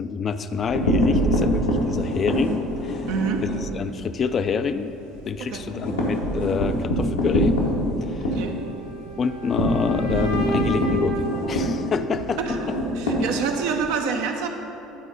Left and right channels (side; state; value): both; normal; correlation 0.49